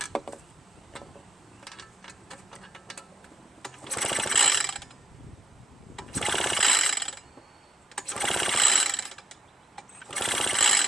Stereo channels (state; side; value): normal; both; correlation 0.77